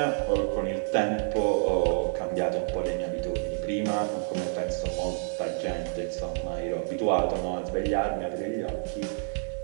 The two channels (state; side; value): silent; left; digital silence